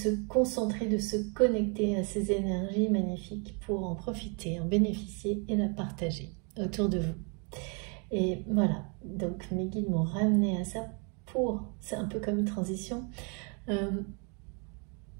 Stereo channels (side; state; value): left; quieter; 35.7 dB